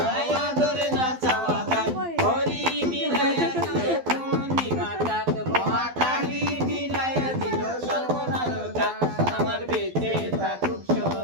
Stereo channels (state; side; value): late; left; 12 ms